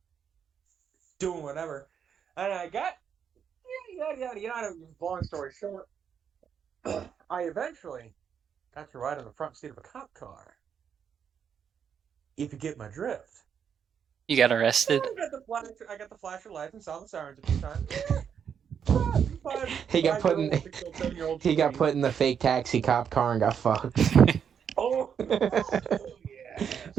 doing whatever, and I got yada. Long story short, I eventually got to ride in the front seat of a cop car. If you get my drift. You got arrested? I got the flasher lights and saw the sirens a few times. He got put in the fake taxi cop car and got fucked. Oh, yes.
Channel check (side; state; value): left; quieter; 7.7 dB